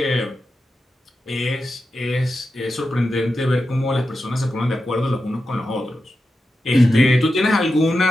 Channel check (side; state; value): both; normal; correlation 0.90